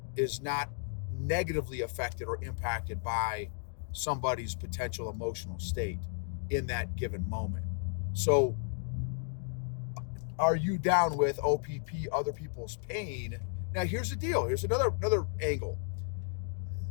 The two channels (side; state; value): right; silent; 55 dB below the other